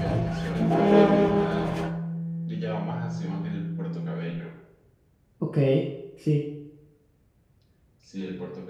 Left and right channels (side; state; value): both; identical; correlation 1.00